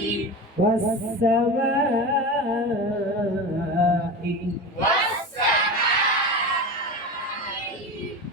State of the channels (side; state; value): both; normal; correlation 0.26